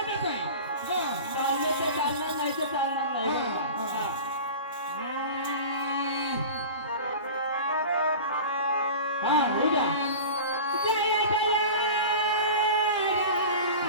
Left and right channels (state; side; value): inverted; both; correlation -0.34